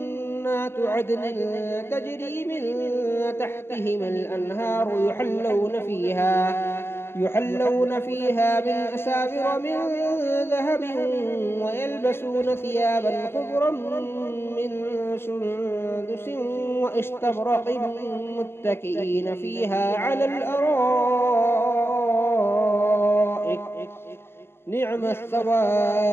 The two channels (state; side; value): late; right; 0.11 ms